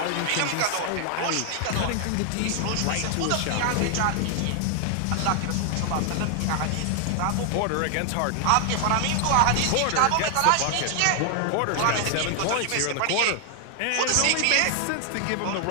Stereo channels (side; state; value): both; different; correlation 0.00